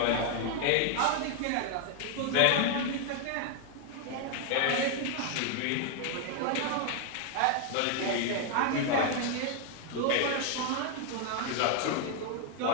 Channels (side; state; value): both; different; correlation 0.01